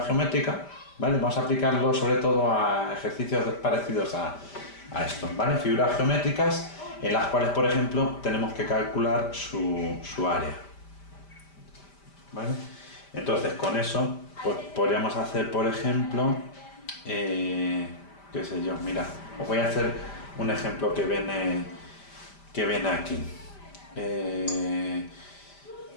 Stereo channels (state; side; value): late; right; 5.1 ms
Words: geométrica, ¿vale? Vamos a aplicarlo sobre todo a ejercicios parecidos a esto, ¿vale? Figuras geométricas en las cuales, por ejemplo, tenemos que calcular su área, ¿vale? Entonces, con eso, pues podríamos hacer, por ejemplo, qué sé yo, mira, os voy a hacer un ejemplo que viene aquí.